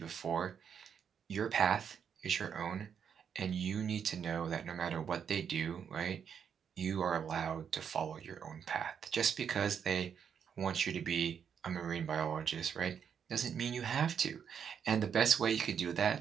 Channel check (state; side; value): quieter; left; 7.6 dB